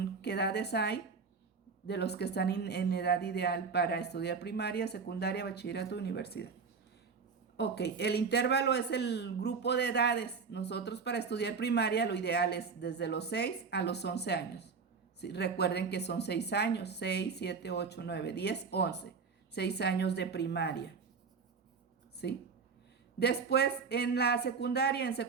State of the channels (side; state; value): left; quieter; 5.3 dB